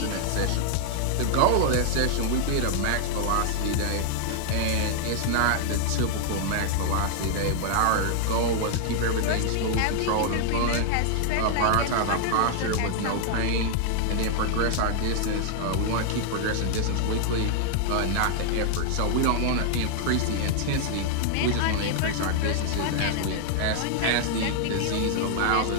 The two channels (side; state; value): both; different; correlation 0.00